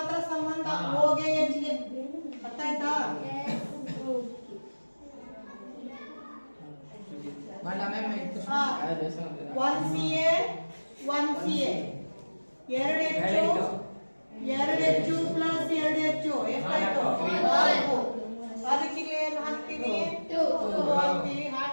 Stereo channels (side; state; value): both; inverted; correlation -1.00